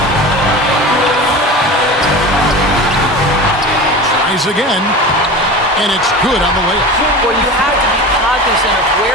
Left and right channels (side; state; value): both; normal; correlation 0.32